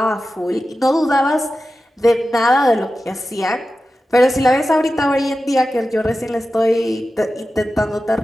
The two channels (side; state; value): both; normal; correlation 0.93